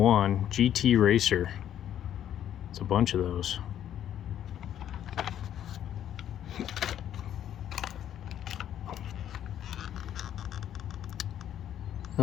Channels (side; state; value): right; quieter; 10.6 dB